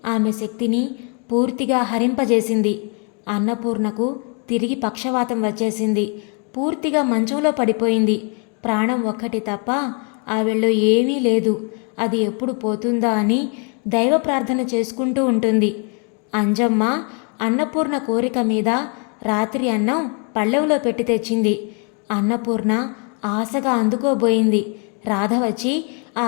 ఆమె శక్తిని పూర్తిగా హరింపజేసింది. అన్నపూర్ణకు తిరిగి పక్షవాతం వచ్చేసింది. పూర్తిగా మంచంలో పడిపోయింది. ప్రాణం ఒక్కటి తప్ప ఆవిడలో ఏమీ లేదు. అది ఎప్పుడు పోతుందా అని దైవ ప్రార్థన చేసుకుంటూ ఉంటుంది. అంజమ్మ అన్నపూర్ణ కోరిక మీద రాత్రి అన్నం పళ్ళెంలో పెట్టి తెచ్చింది. అన్నపూర్ణ ఆశగా అందుకోబోయింది. రాధ వచ్చి ఆ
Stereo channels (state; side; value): quieter; right; 37.5 dB